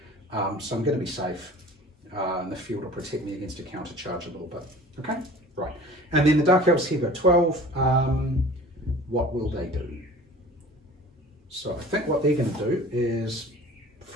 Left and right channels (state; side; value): normal; both; correlation 0.43